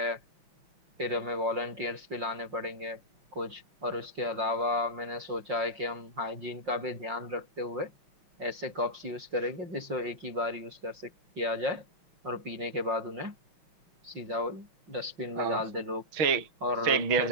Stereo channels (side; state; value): left; late; 5.6 ms